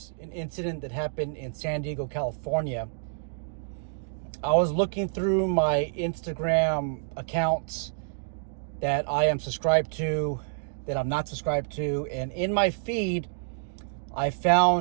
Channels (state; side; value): silent; left; digital silence